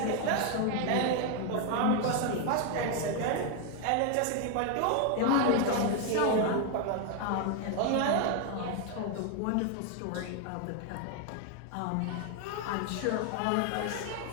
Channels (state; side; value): different; both; correlation 0.01